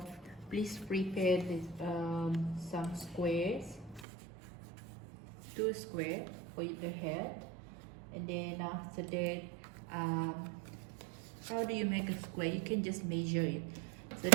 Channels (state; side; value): drops out; left; at 4.0 s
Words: please prepare this, some squares, 2 square for the head, and then after that, how do you make a square? You can just measure it. So